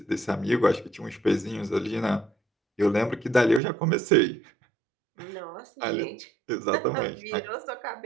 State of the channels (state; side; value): drops out; left; at 3.6 s